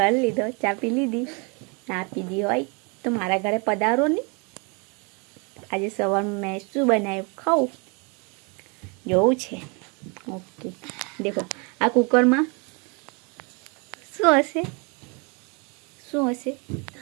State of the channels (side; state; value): left; quieter; 32.1 dB